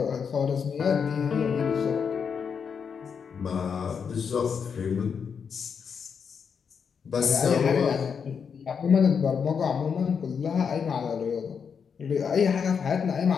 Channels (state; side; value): quieter; right; 6.5 dB